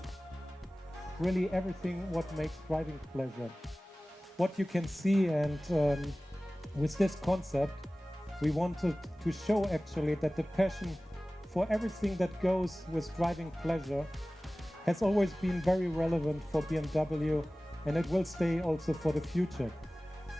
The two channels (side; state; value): both; normal; correlation 0.97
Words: really everything what makes driving pleasure. What you can see, and with this concept we wanted to show actually that the passion for everything that goes with driving pleasure has always been very relevant for BMW, and it will stay also for the future.